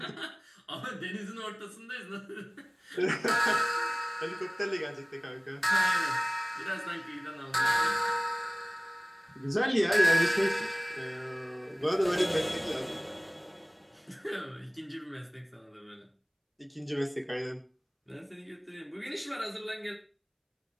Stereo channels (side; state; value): both; identical; correlation 1.00